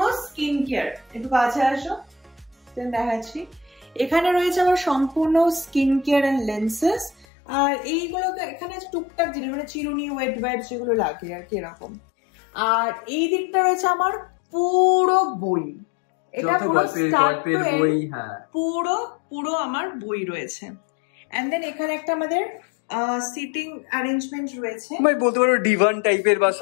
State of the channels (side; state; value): right; drops out; at 7.2 s